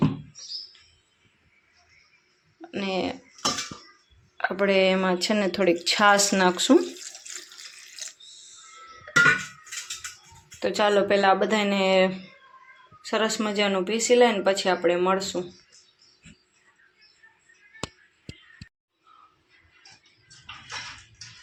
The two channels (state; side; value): identical; both; correlation 1.00